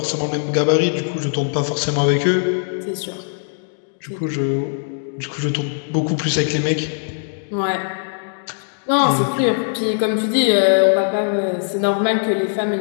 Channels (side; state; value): right; silent; digital silence